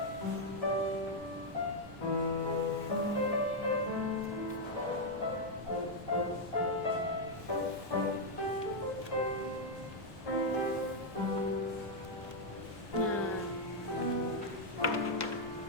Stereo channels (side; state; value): both; normal; correlation -0.02